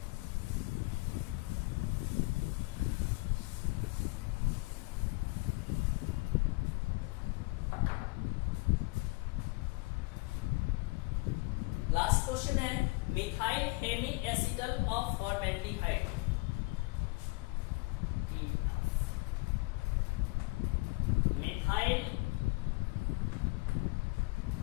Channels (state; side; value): quieter; right; 25.7 dB